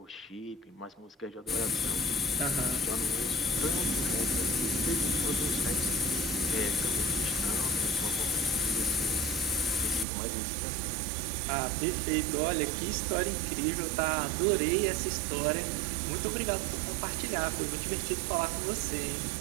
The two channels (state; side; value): drops out; left; at 10.1 s